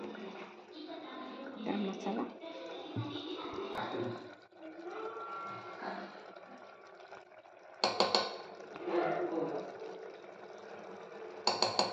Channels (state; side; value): identical; both; correlation 1.00